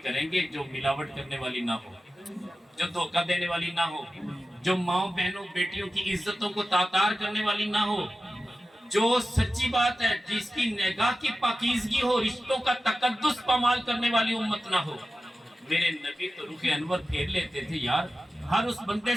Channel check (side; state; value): both; normal; correlation 0.94